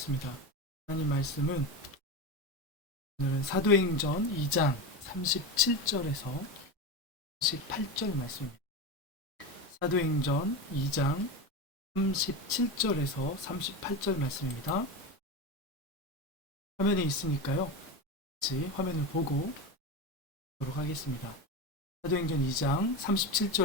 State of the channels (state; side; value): normal; both; correlation 0.20